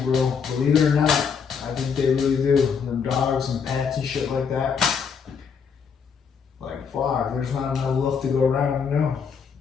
Believe it or not, I think they really do. Them dogs and pets and shit like that. Like, fuck, there's not enough love to go around, you know?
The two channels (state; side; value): quieter; right; 6.3 dB